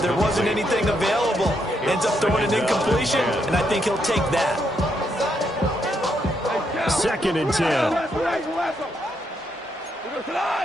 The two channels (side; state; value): both; normal; correlation 0.77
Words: there wasn't anything available. Ends up throwing an incompletion, and I think he'll take that. 2nd and 10.